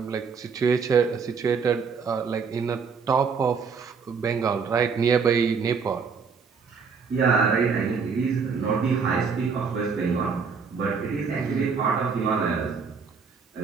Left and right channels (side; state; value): left; quieter; 5.6 dB